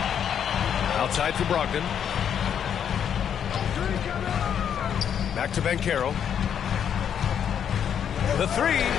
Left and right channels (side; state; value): right; quieter; 8.5 dB